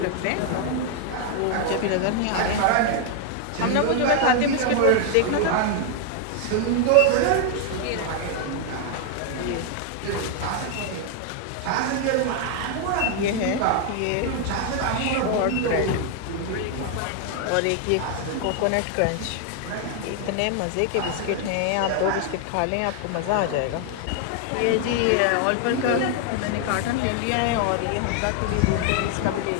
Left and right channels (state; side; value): different; both; correlation 0.00